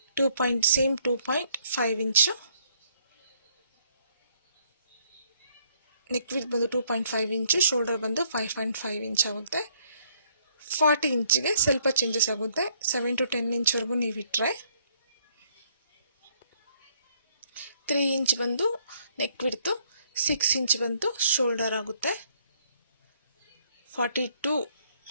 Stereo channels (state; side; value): inverted; both; correlation -0.66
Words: 2.5 ಇಂಚು ನೆಕ್ ವಿಡ್ತ್ ಬಂದು 2.5 ಇಂಚು, ಶೋಲ್ಡರ್ ಬಂದು 5.5 ಇಂಚ್ ಆಗುತ್ತೆ. 40 ಇಂಚಿಗೆ ಸ್ವಲ್ಪ ಚೇಂಜಸ್ ಆಗುತ್ತೆ. 7 to 10 ಇಂಚ್ವರೆಗೂ ನೀವು ಇಟ್ಟರೆ 3 ಇಂಚ್ ಬಂದು ನೆಕ್ ವಿಡ್ತು, 6 ಇಂಚ್ ಬಂದು ಶೋಲ್ಡರ್ ಆಗುತ್ತೆ. 42